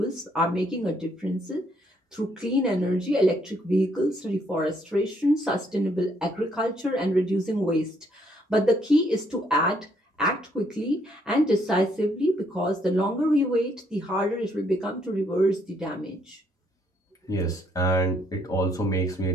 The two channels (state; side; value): normal; both; correlation 0.70